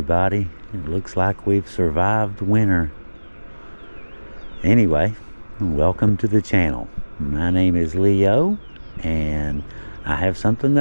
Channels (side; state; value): both; inverted; correlation -1.00